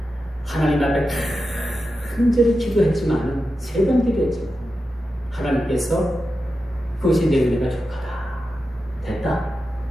하나님 앞에 간절히 기도했지만 3번 기도했죠. 하나님께서 그것이 내 은혜가 족하다. 됐다.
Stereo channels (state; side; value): normal; both; correlation 0.91